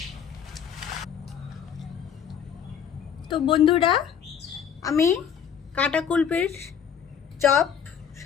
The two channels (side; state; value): right; quieter; 8.0 dB